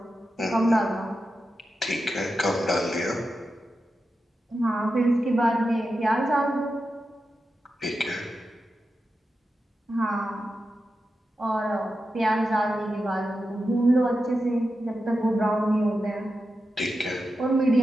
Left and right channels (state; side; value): normal; both; correlation 0.90